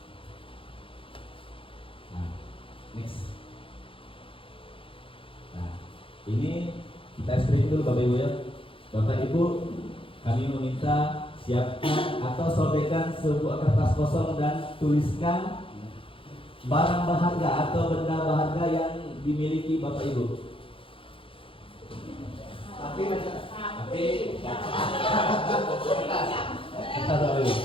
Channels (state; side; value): late; right; 0.26 ms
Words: Nah, next. Nah, ini kita speaking dulu Bapak Ibu ya. Bapak Ibu, kami meminta siapkan atau sobekkan sebuah kertas kosong dan tuliskan barang berharga atau benda berharga yang dimiliki Bapak Ibu.